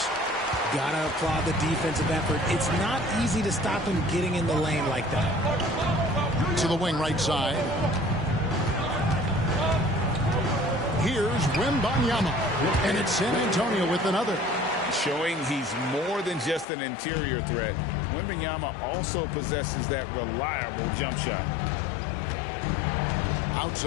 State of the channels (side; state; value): right; drops out; at 16.7 s